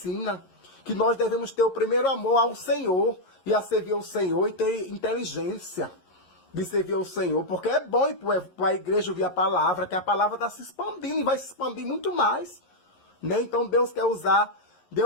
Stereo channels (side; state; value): right; late; 11 ms